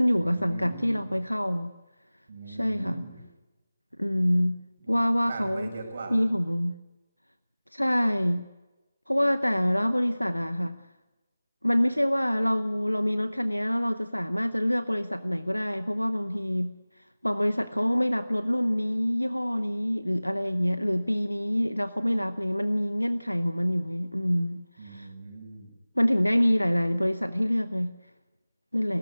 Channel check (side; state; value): both; inverted; correlation -0.99